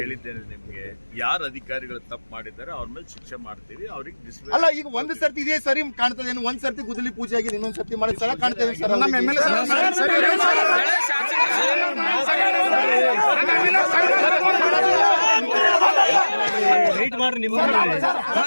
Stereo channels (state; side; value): inverted; both; correlation -1.00